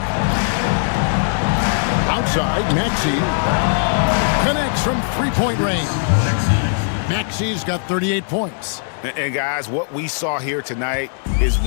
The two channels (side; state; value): right; silent; digital silence